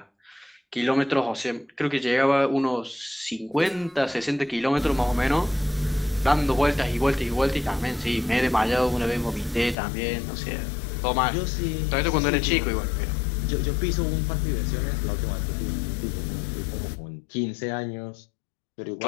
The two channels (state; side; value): drops out; right; at 9.8 s